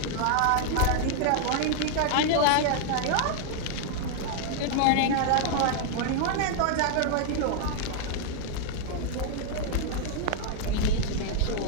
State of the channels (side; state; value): both; different; correlation 0.00